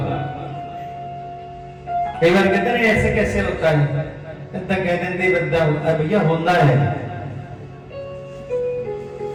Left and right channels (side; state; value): both; identical; correlation 1.00